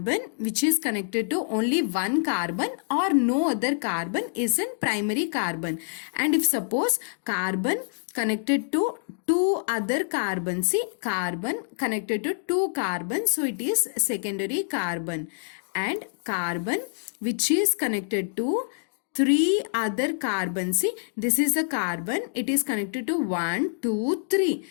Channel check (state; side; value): silent; right; digital silence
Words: which is connected to only one carbon or no other carbon is a primary carbon. And if suppose carbon connected to two other carbons, see, carbon connected to two carbons, so it is secondary carbon. And carbon which is connected to three other carbons, see, this is a carbon, it is connected to 1, 2, 3,